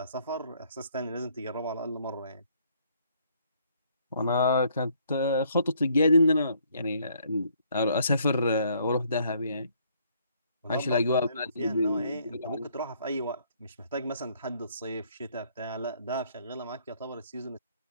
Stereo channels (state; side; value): inverted; both; correlation -0.66